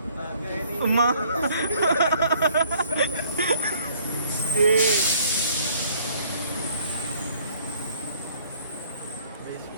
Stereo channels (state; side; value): inverted; both; correlation -0.59